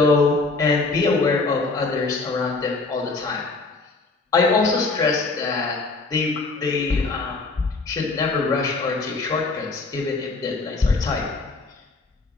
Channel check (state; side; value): quieter; right; 3.7 dB